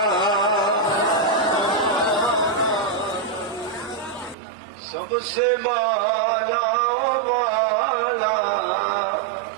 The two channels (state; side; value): drops out; left; at 4.4 s